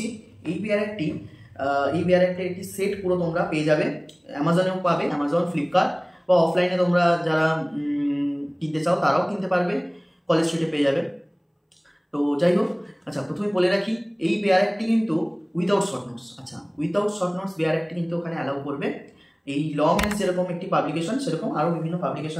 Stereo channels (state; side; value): identical; both; correlation 1.00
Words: এই বেয়ার অ্যাক্টের একটি সেট পুরো তোমরা পেয়ে যাবে, অ্যামাজনেও পাবে, অ্যামাজন, ফ্লিপকার্ট, বা অফলাইনে তোমরা যারা কিনতে চাও তারাও কিনতে পারবে, কলেজ স্ট্রিটে পেয়ে যাবে। তো যাই হোক, আচ্ছা প্রথমে বলে রাখি এই বেয়ার অ্যাক্টটি কিন্তু উইদাউট শর্ট নোটস। আচ্ছা, উইদাউট শর্ট নোটস বেয়ার অ্যাক্টটি কিন্তু ওখানে অ্যালাউ করবে। এই ল মেন্স যেরকম একটি পাবলিকেশন, সেরকম আরও বিভিন্ন